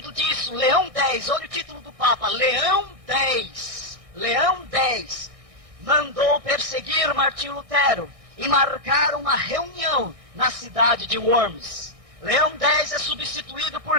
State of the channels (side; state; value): left; late; 1.6 ms